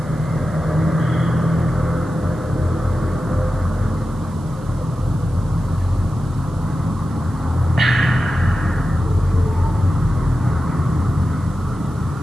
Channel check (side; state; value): right; noise; hiss, 28 dB below the sound